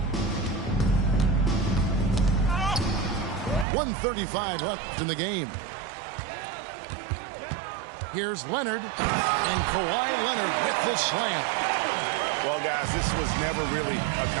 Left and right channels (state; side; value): drops out; left; at 3.7 s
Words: .135 left in the game. Here's Leonard. And Kawhi Leonard with the slam. Well, guys, this was never really a